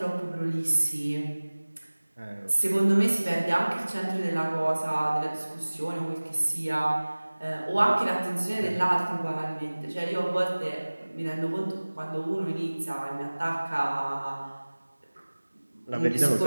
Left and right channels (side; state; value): both; inverted; correlation -1.00